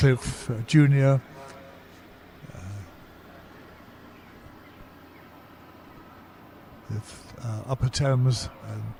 Jr. With Upper Thames and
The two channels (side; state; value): both; identical; correlation 1.00